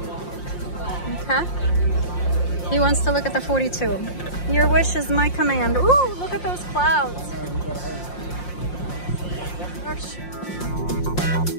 Okay. He wants to look at the 42. Your wish is my command. Ooh, look at those clouds. Gosh.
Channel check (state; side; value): late; right; 5.7 ms